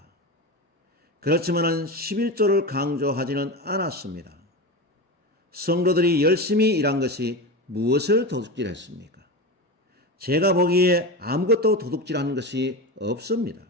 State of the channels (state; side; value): normal; both; correlation 0.22